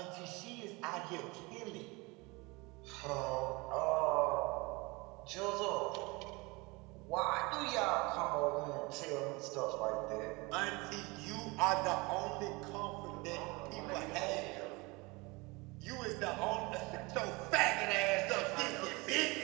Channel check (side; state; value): left; quieter; 25.3 dB